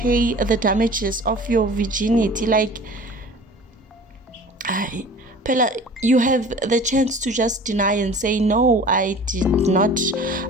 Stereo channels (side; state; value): both; normal; correlation 0.43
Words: the damages of your virginity. Like, Pella, you have the chance to just deny and say, no, I did not